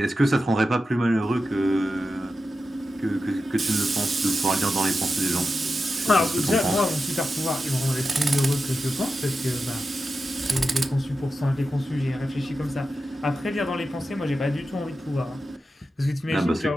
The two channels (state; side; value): normal; both; correlation 0.91